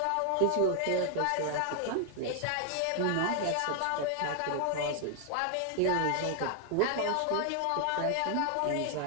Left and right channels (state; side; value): different; both; correlation 0.00